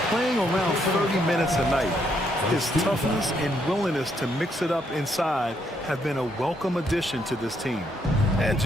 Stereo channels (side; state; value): both; normal; correlation 0.74